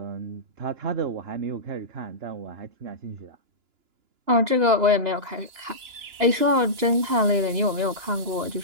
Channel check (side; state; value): left; late; 2.9 ms